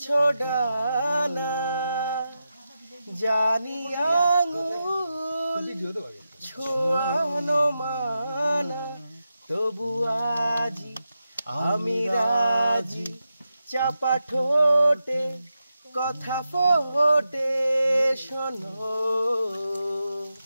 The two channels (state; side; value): inverted; both; correlation -0.89